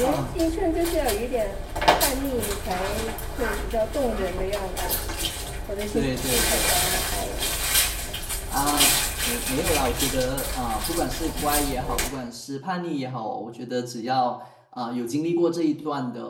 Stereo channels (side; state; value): both; identical; correlation 1.00